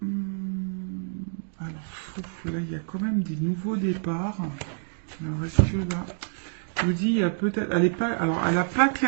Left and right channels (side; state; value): left; silent; digital silence